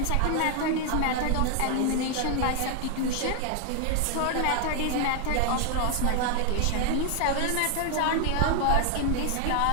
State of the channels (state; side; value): different; both; correlation 0.00